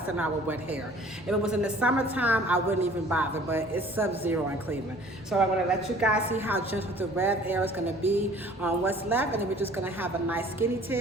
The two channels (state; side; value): normal; both; correlation 0.51